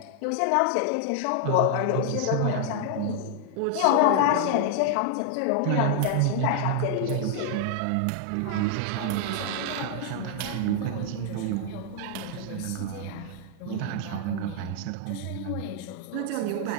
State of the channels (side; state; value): both; different; correlation 0.00